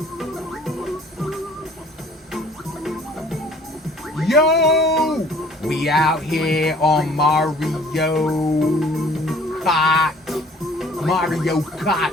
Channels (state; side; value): normal; both; correlation 0.53